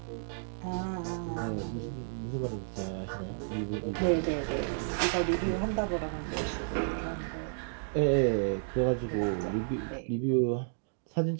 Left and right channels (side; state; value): left; silent; digital silence